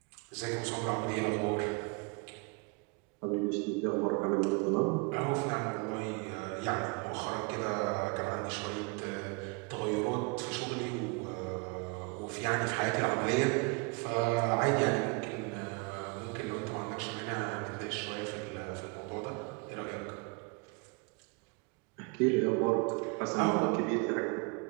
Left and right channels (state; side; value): quieter; left; 31.1 dB